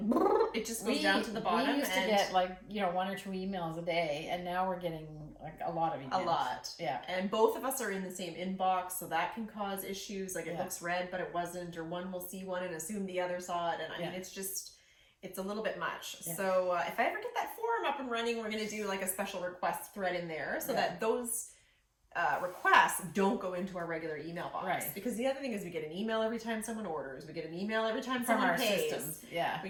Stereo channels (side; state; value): both; identical; correlation 1.00